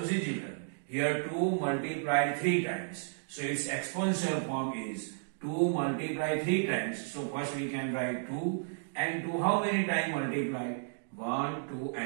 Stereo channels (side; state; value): left; silent; digital silence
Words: see children, here 2 multiplied 3 times. So its exponential form is 2 multiplied 3 times. So first we can write 2 and 2 how many times multiplied? 1, 2